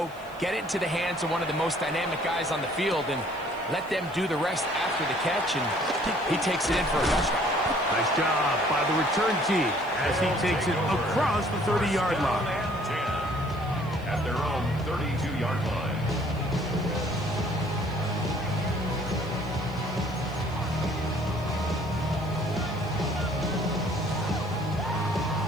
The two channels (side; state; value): left; noise; hiss, 26 dB below the sound